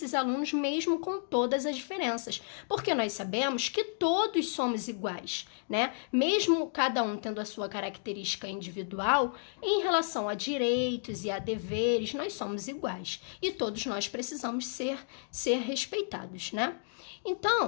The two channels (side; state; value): right; silent; digital silence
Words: alunos mesmo com todas as diferenças, porque nós sabemos que todos somos iguais, né? Mesmo cada um tendo a sua característica individual, em relação a direitos e a deveres, nós somos iguais e todos nós precisamos ser respeitados, né?